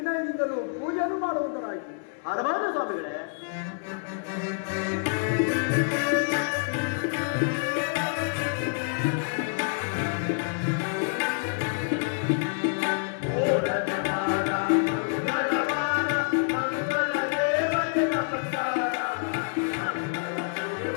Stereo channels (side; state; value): right; silent; 60 dB below the other